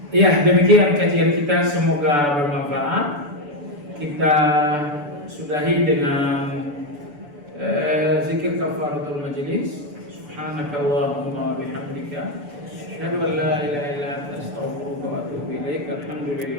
Ya, demikian kajian kita, semoga bermanfaat. Kita sudahi dengan zikir kafaratul majlis. Subhanakallahumma wa bihamdika, asyhadu an la ilaha illa anta, astaghfiruka wa atubu ilaik.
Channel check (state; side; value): late; left; 6.9 ms